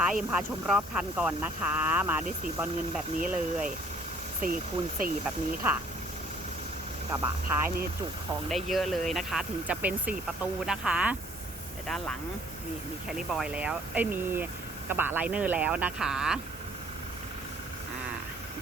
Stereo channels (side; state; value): both; normal; correlation 0.59